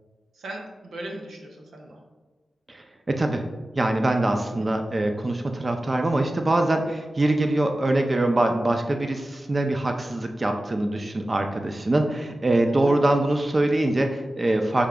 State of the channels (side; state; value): both; normal; correlation 0.95